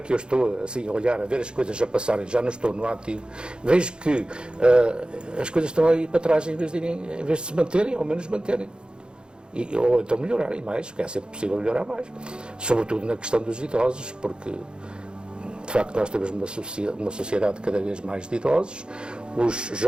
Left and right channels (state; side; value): late; left; 0.051 ms